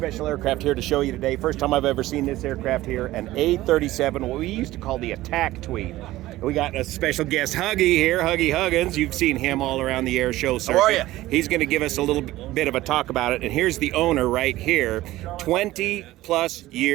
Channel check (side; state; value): left; quieter; 16.5 dB